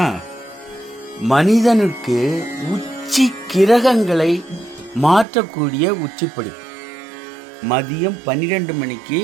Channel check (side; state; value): left; drops out; at 5.2 s